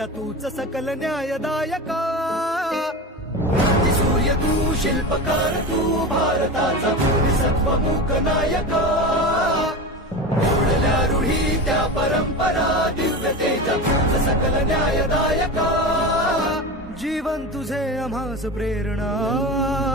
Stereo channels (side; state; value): both; normal; correlation 0.25